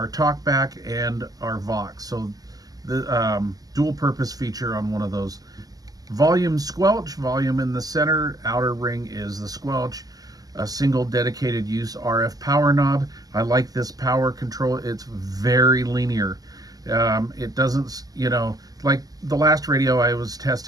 talkback and our Vox. So the dual purpose feature on one of those. Volume squelch, volume in the center, outer ring is the squelch. A single dedicated use RF power knob. I like this power control. It's very linear. It doesn't, like the last radio I was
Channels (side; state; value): left; late; 0.17 ms